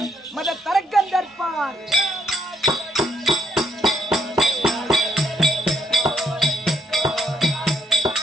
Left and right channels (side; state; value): both; normal; correlation 0.73